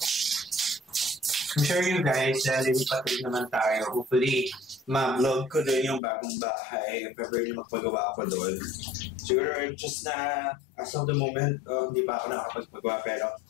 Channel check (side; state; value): right; drops out; at 6.0 s